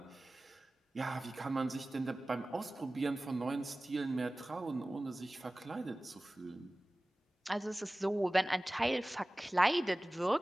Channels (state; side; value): normal; both; correlation 0.98